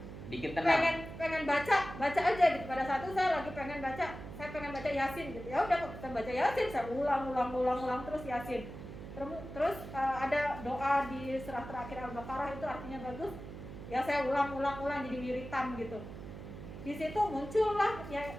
Bikin tenang. pengen baca aja gitu. Pada saat itu saya lagi pengen baca Yasin gitu, ya udah kita baca Yasin, saya ulang terus Yasin. Terus ada doa di surah terakhir Al-Baqarah itu artinya bagus, ya saya ulang jadi wiritan gitu. Di situ muncullah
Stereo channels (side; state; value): right; noise; hum, 11 dB below the sound